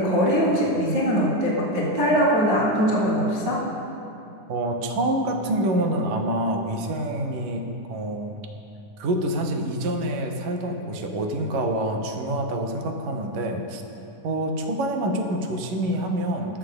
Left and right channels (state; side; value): late; left; 11 ms